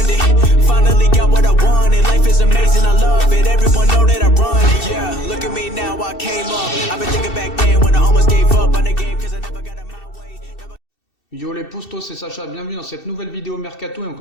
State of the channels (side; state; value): right; late; 2.7 ms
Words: Finally got what I wanted. Life is amazing, I love it. Everyone know that I run it. Yeah, look at me now, I came up. I've been thinking back then when I almost gave up on the game cause I never got in my way. Yo les postos, c'est Sacha, bienvenue dans cette nouvelle vidéo Mercato et on